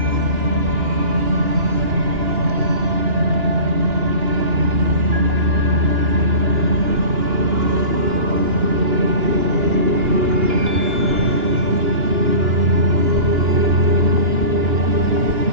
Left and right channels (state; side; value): late; left; 2.9 ms